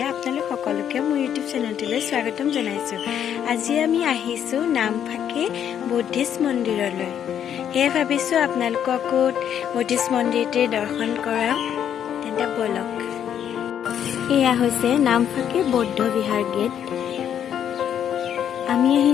আপোনালোক সকলোকে মোৰ ইউটিউব চেনেলটোলৈ স্বাগতম জনাইছোঁ। আজি আমি আহিছোঁ নামফাকে বুদ্ধিষ্ট মন্দিৰলৈ। সেয়ে ভাবিছোঁ আপোনালোককো বুদ্ধিষ্ট মন্দিৰটিৰ দৰ্শন কৰাওঁ। তেন্তে ব'লক। এয়া হৈছে নামফাকে বৌদ্ধ বিহাৰ গেট। আমি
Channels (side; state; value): right; quieter; 9.3 dB